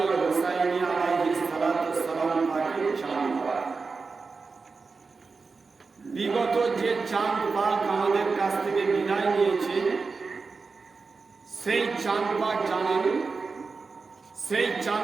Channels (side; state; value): left; quieter; 4.5 dB